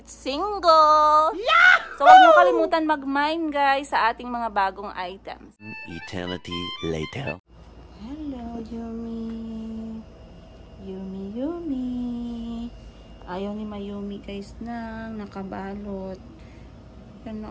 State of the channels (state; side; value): identical; both; correlation 1.00